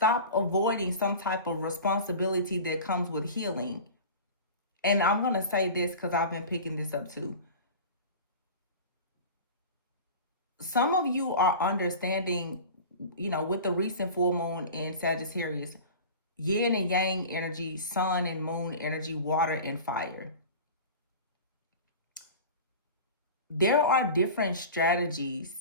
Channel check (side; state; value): both; inverted; correlation -0.35